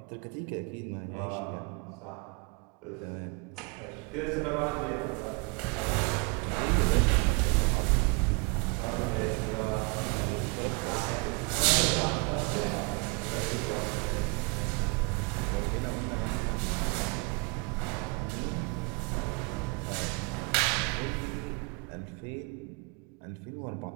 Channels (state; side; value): quieter; left; 29.8 dB